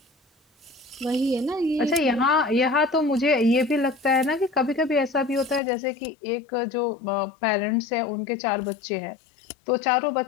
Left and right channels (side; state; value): right; drops out; at 5.6 s